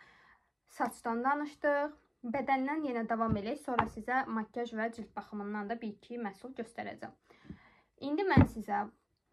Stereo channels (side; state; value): both; identical; correlation 1.00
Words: Saçdan danışdıq. Bədəndən yenə davam edək. Sonra sizə makyaj və cilt baxımından da 1-2 məhsul göstərəcəm. İndi mən sizə